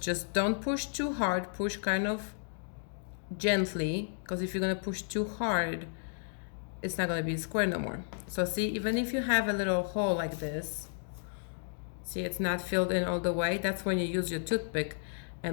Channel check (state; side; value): silent; right; digital silence